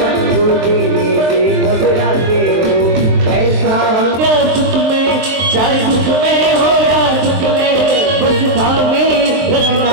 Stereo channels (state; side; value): late; left; 23 ms